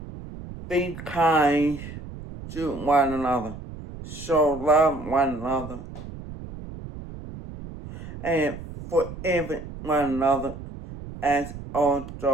be kind to one another, so love one another, and forgive one another as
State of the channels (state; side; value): noise; right; rumble, 12 dB below the sound